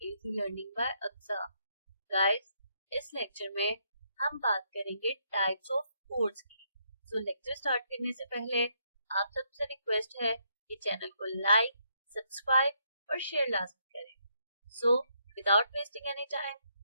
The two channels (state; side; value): inverted; both; correlation -0.74